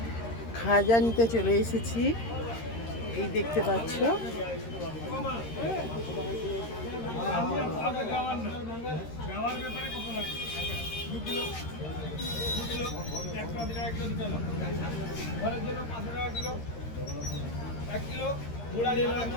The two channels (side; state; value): right; late; 13 ms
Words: খাজা নিতে চলে এসেছি। এই দেখতে পাচ্ছ,